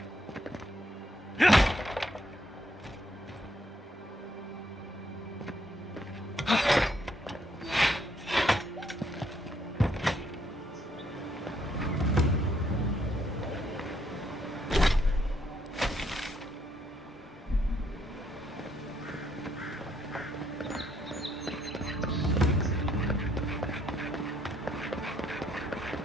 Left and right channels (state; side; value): normal; both; correlation 0.72